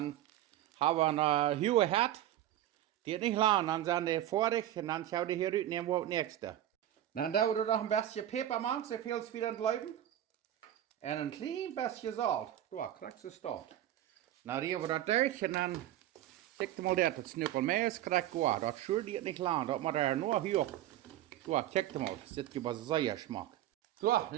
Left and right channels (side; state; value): left; quieter; 12.7 dB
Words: haben wir eine hohe Herd. Geht nicht lang. Dann sind die fertig und dann schauen die hier rein, nehmen wir das nächste. Dann dauert es noch ein bisschen Pfeffer machen, so viel es wieder bleiben. Und ein klein bisschen Salz. Du, kriegst du es dort. Dann rühren wir das durch und dann kijk je mal das. Das Knüppel mehr ist, kriegt gut. Das schürt geht nicht lang. Das macht er nur hier. So, kijk mal, das gibt sehr Geschmack. So,